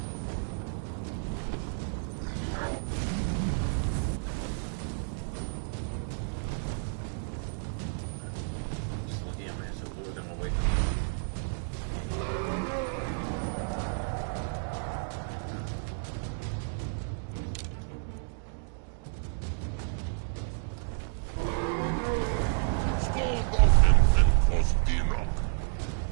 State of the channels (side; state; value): left; silent; digital silence